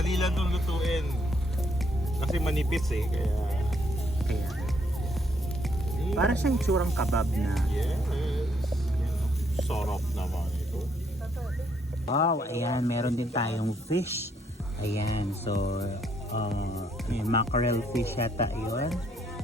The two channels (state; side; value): normal; both; correlation 0.71